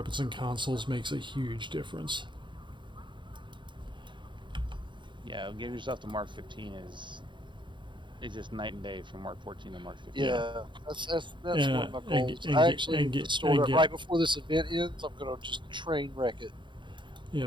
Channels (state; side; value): late; left; 0.23 ms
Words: and consoles makes a huge difference. Yeah, getting yourself to Mark 15 is just night and day from Mark 14 to Mark 15. Yeah, that's one of my goals. I actually stored it right before this event ends. I'm gonna just train wreck it.